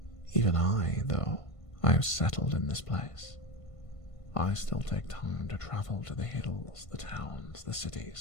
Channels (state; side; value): late; right; 1.5 ms